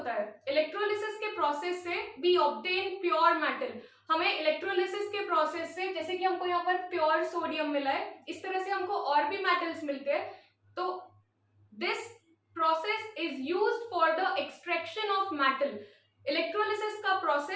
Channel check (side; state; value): both; identical; correlation 1.00